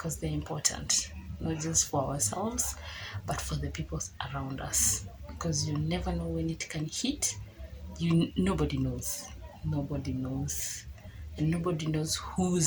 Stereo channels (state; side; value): identical; both; correlation 1.00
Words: they're important, not just for ourselves but for the people around us, because you never know when it can hit you. Nobody knows, and nobody knows